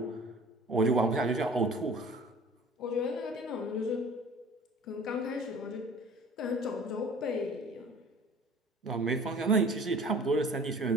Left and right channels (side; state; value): both; normal; correlation 0.46